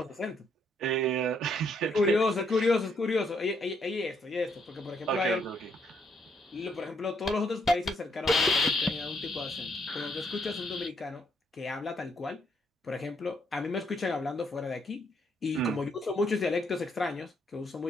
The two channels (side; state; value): both; normal; correlation 0.72